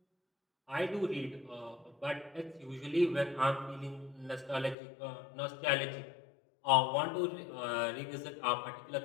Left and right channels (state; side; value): drops out; right; at 4.8 s